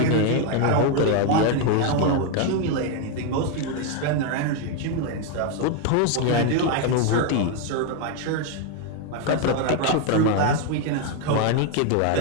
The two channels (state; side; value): different; both; correlation 0.01